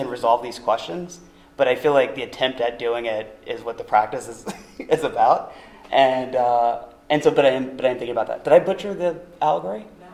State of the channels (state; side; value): identical; both; correlation 1.00